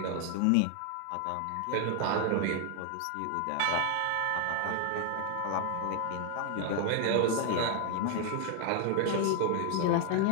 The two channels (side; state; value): both; different; correlation 0.00